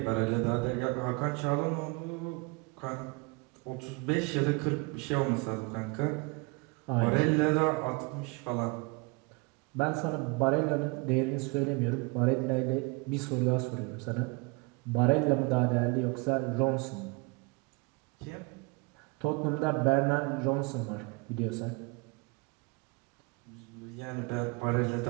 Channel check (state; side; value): quieter; left; 28.1 dB